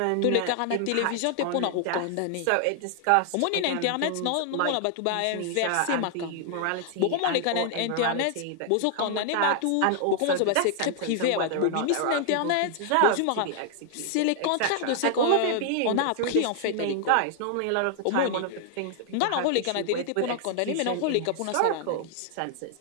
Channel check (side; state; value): both; different; correlation 0.00